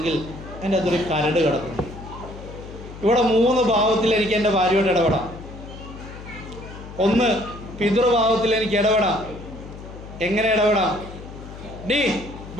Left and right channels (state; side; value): noise; left; hum, 14 dB below the sound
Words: എൻ്റെ അകത്തൊരു കരട് കിടക്കുന്നു. ഇവിടെ മൂന്ന് ഭാവത്തിൽ എനിക്ക് എൻ്റെ ഭാര്യയോട് ഇടപെടാം. ഒന്ന്, പിതൃഭാവത്തിൽ എനിക്ക് ഇടപെടാം. എങ്ങനെ ഇടപെടാം? ഡീ